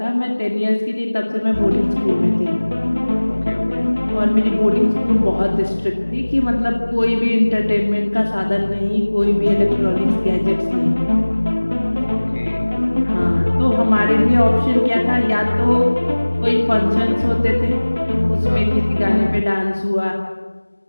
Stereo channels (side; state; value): both; inverted; correlation -1.00